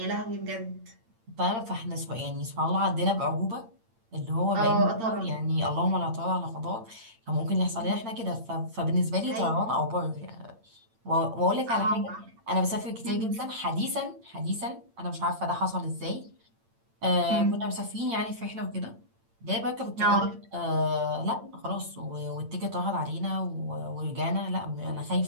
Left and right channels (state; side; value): late; left; 8.8 ms